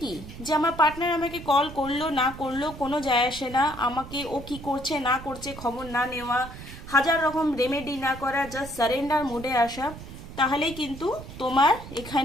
কি, যে আমার পার্টনার আমাকে কল করলো না করলো কোনো যায় আসে না, আমাকে ও কি করছে না করছে খবর না নেওয়া, হাজার রকম রেমেডি না করা, জাস্ট সারেন্ডার মোডে আসা, তাহলেই কিন্তু তোমার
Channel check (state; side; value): noise; right; rumble, 13 dB below the sound